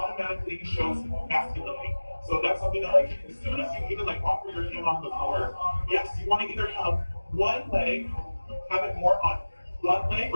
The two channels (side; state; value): both; inverted; correlation -1.00